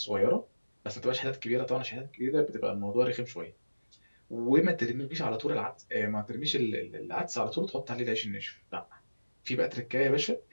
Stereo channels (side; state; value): both; inverted; correlation -1.00